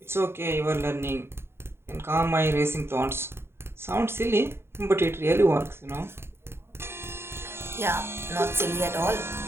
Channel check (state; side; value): late; left; 0.12 ms